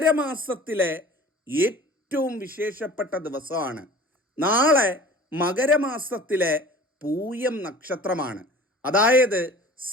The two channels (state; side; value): normal; both; correlation 0.43